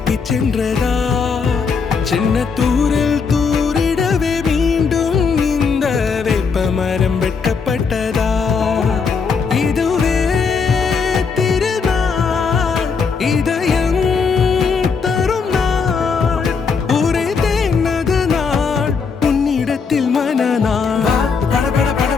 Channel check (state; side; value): quieter; right; 5.4 dB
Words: சென்றதா சின்ன தூரல் தூரிடவே மீண்டும் இந்த வேப்ப மரம் வெட்கப்பட்டதா இதுவே திருநாள் இதயம் தரும் நாள் ஒரே தேனது நாள் உன்னிடத்தில் மனநாள் பட பட பட